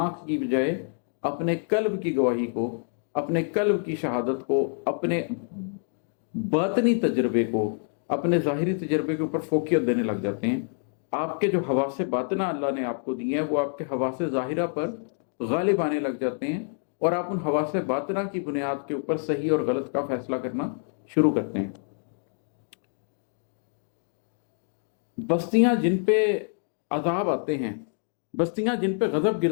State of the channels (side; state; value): right; silent; 60 dB below the other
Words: की बजाय अपने कल्ब की गवाही को, अपने कल्ब की शहादत को, अपने बातनी तजर्बे को, अपने ज़ाहिरी तजर्बे के ऊपर फोकियत देने लग जाते हैं। आपके जो हवासे बातना अल्लाह ने आपको दिए हैं वो आपके हवासे ज़ाहिरा पर गालिब आने लग जाते हैं और आप उन हवासे बातना की बुनियाद के ऊपर सही और गलत का फैसला करना शुरू करते हैं। बस्तियां जिन पे अजाब आते हैं, बस्तियां जिन पे गजब